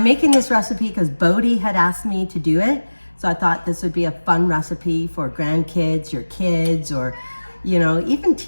making this recipe because Bodie had asked me to do it. So I thought this would be a fun recipe for grandkids, your kids, or, you know, even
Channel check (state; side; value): inverted; both; correlation -1.00